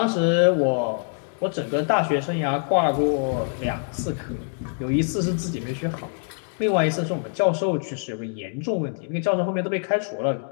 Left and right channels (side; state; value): right; silent; 60 dB below the other